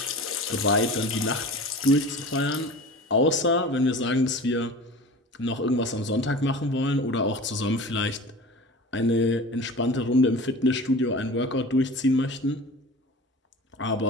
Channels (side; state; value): both; normal; correlation 0.36